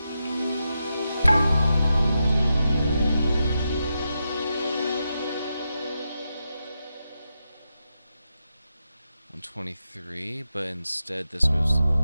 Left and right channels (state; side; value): inverted; both; correlation -0.87